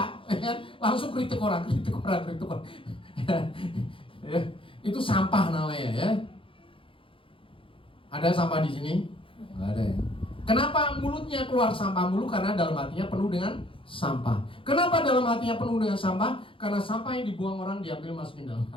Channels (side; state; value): right; late; 0.25 ms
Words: ya, langsung kritik orang. Ya, itu sampah namanya ya. Ada sampah di sini? Nggak ada ya. Kenapa mulutnya keluar sampah mulu? Karena dalam hatinya penuh dengan sampah. Kenapa dalam hatinya penuh dengan sampah? Karena sampah yang dibuang orang diambil masukin dalam